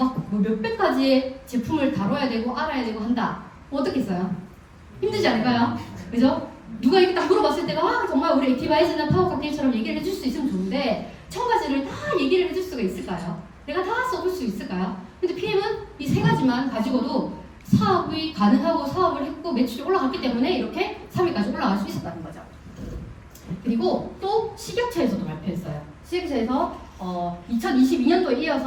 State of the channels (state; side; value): identical; both; correlation 1.00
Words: 몇백 가지의 제품을 다뤄야 되고 알아야 되고 한다. 어떻겠어요? 힘들지 않을까요? 그죠? 누가 이렇게 딱 물어봤을 때가 정말 우리 액티바이즈나 파워칵테일처럼 얘기를 해줄 수 있으면 좋은데 1,000가지를 다 얘기를 해줄 수가 있을까요? 내가 다 써볼 수 있을까요? 근데 PM은 이 세 가지만 가지고도 사업이 가능하고 사업을 했고 매출이 올라갔기 때문에 이렇게 3위까지 올라갈 수 있었다는 거죠. 그리고 또 식약처에서도 발표했어요. 식약처에서 2022년도에